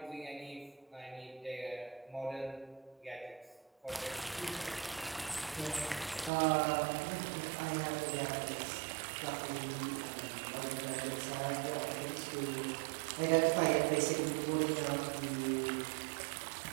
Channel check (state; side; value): drops out; left; at 6.3 s